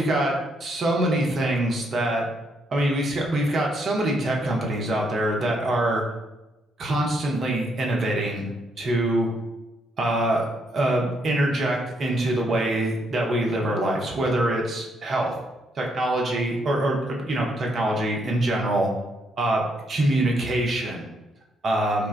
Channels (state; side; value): normal; both; correlation 0.75